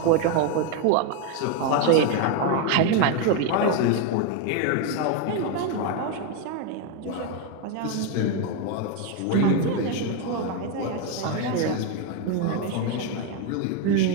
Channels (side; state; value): both; different; correlation 0.02